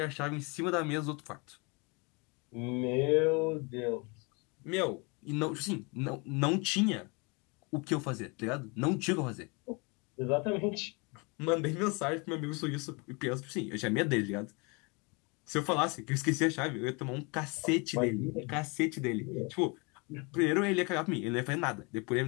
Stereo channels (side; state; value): right; quieter; 30.1 dB